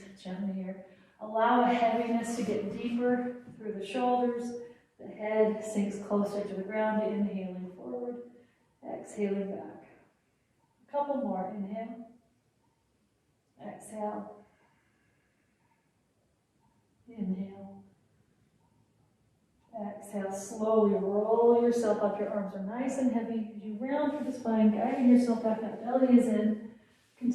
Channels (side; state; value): both; identical; correlation 1.00